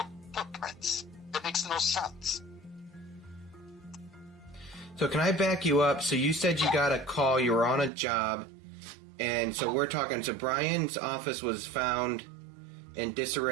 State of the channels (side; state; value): left; drops out; at 7.9 s